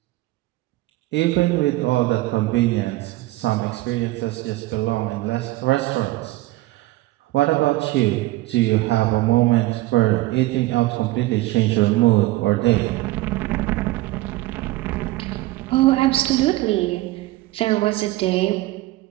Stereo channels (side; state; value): left; quieter; 18.5 dB